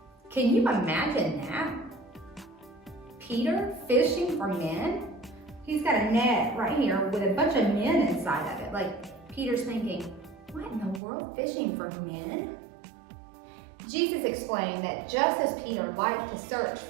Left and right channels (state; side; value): drops out; left; at 11.0 s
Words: Can you imagine that? Peter fishing for men? He's got a net right here with a bunch of men inside of it. Like Peter's thinking, what in the world, fishing for men? Jesus explained that just as Peter liked to search